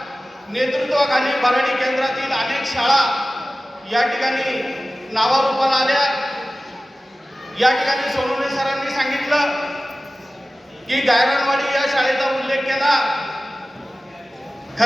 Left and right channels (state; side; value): normal; both; correlation 0.96